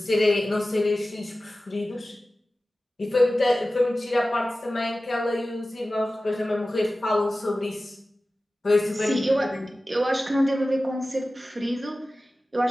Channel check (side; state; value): both; normal; correlation 0.96